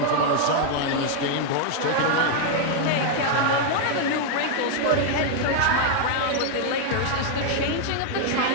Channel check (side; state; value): both; different; correlation 0.00